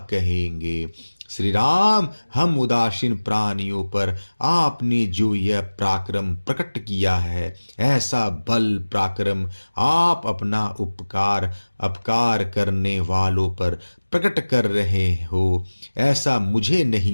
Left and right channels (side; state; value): both; inverted; correlation -1.00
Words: कहेंगे? श्री राम, हम उदासीन प्राणियों पर आपने जो यह पराक्रम प्रकट किया है, ऐसा बल पराक्रम आप अपना अपकार करने वालों पर प्रकट कर रहे हो, ऐसा मुझे